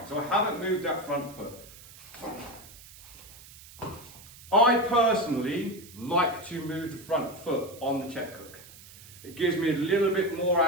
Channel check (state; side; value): noise; right; hiss, 19 dB below the sound